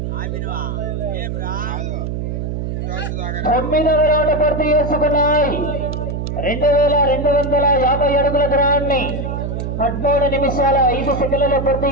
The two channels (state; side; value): noise; right; hum, 4 dB below the sound